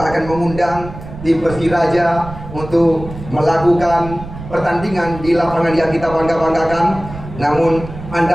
akan mengundang tim Persiraja untuk melakukan pertandingan di lapangan yang kita bangga-banggakan. Namun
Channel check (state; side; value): noise; right; rumble, 13 dB below the sound